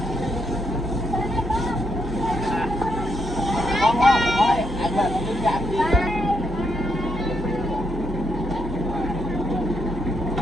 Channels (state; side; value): normal; both; correlation 0.78